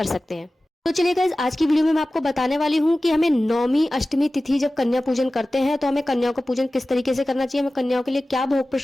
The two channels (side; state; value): both; normal; correlation 0.96